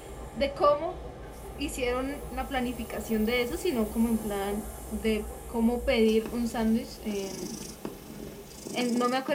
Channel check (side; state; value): both; identical; correlation 1.00